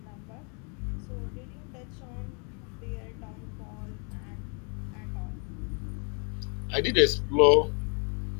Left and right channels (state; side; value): quieter; right; 36.8 dB